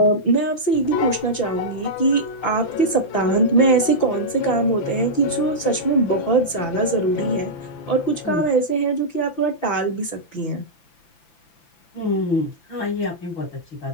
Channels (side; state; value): right; late; 5.9 ms